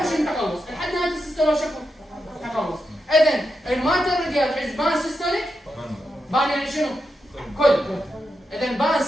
شنو التقلص؟ لحد نهايه السيستول شكو تقلص. اذا المايترال ريجيرج از بان سيستوليك بان يعني شنو؟ كل. اذا بان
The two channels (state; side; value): normal; both; correlation 0.86